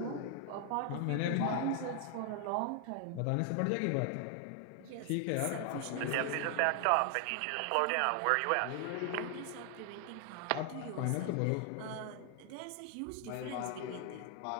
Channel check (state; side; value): different; both; correlation 0.00